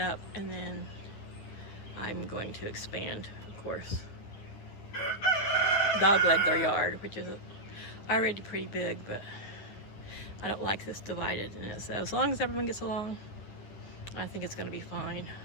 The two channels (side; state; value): right; late; 10 ms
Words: and then I'm going to expand, of course, dogleg their yard, which is already pretty big, but I don't like this divided. And so as long as everyone gets along, I think it's going to be fine.